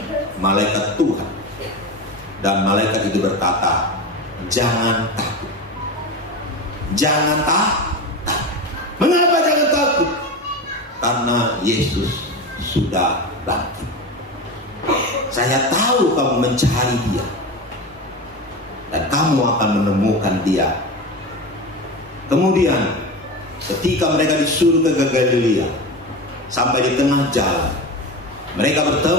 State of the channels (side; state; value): both; normal; correlation 0.25